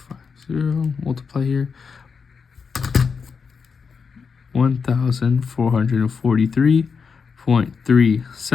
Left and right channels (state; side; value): quieter; right; 5.6 dB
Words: 50 multiply here